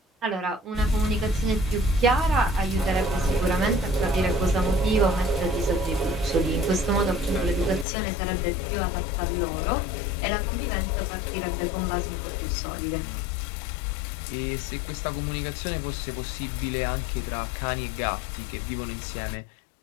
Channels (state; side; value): drops out; right; at 7.9 s